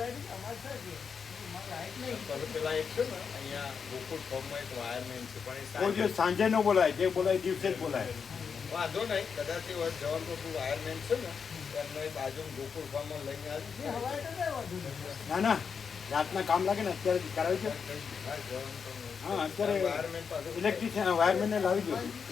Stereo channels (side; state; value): right; quieter; 6.2 dB